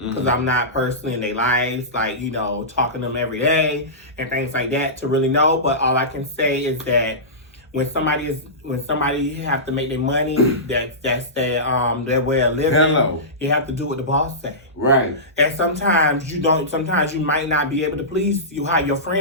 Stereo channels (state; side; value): normal; both; correlation -0.19